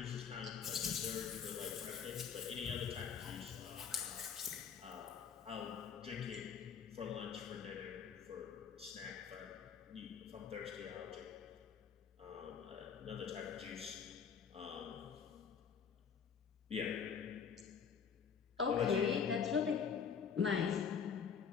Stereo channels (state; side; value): quieter; right; 6.8 dB